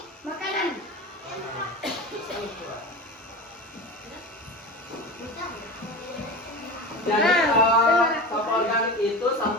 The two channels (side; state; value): both; normal; correlation 0.29